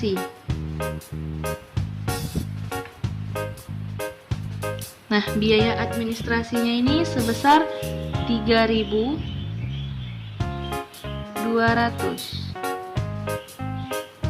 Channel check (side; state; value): both; identical; correlation 1.00